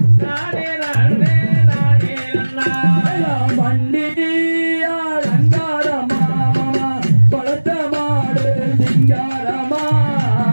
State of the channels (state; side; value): inverted; both; correlation -1.00